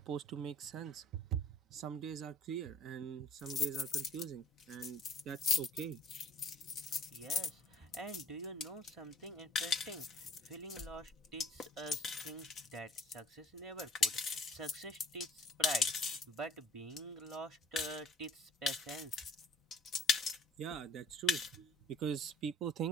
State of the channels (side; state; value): both; normal; correlation 0.54